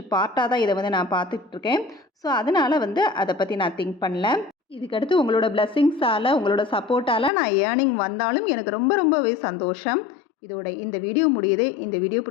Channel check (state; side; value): drops out; right; at 7.3 s